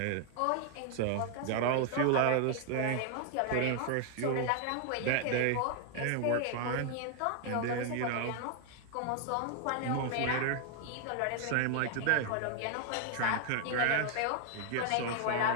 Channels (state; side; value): different; both; correlation 0.00